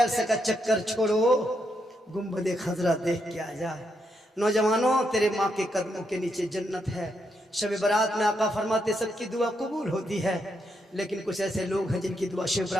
का चक्कर छोड़ो, गुंबद खजरा देख के आ जा। नौजवानों, तेरे माँ के कदमों के नीचे जन्नत है। शब बरात में आका फरमाते सबकी दुआ कबूल होती है, लेकिन कुछ ऐसे लोग हैं जिनकी दुआ शब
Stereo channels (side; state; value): both; normal; correlation 0.80